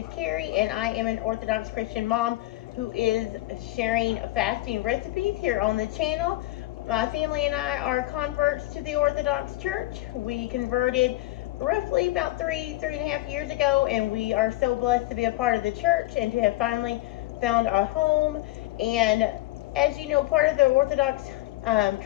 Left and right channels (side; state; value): right; quieter; 18.2 dB